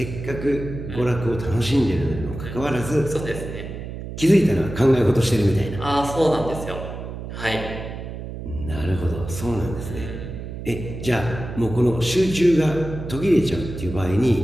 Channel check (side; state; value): right; noise; hum, 9 dB below the sound